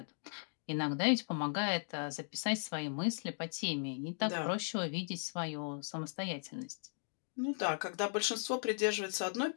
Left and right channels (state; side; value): silent; right; digital silence